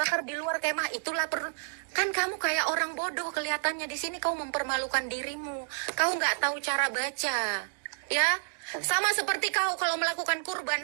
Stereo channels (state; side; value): silent; left; digital silence